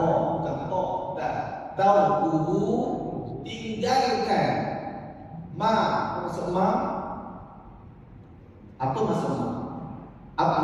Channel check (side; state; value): both; identical; correlation 1.00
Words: tinggalkan Ma, apa maksud ma? Apa maksud ma? Apa?